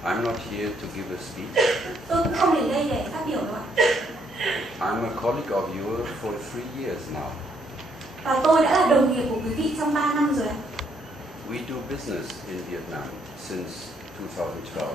I'm not here to give a speech. Tôi cũng không đến đây để phát biểu đâu ạ. I'm a colleague of yours for 3 years now. Và tôi đã là đồng nghiệp của quý vị trong 3 năm rồi ạ. We do business in Vietnam since 2012.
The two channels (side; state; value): both; normal; correlation 0.72